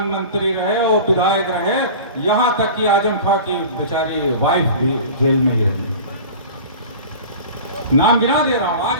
मंत्री रहे और विधायक रहे, यहां तक कि आजम खां की बेचारी वाइफ भी जेल में ही रही। नाम गिना दे रहा हूं,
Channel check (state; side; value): inverted; both; correlation -0.37